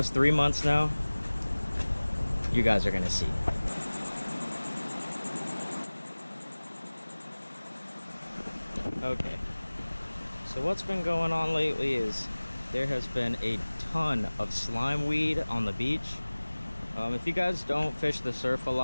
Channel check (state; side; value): inverted; both; correlation -1.00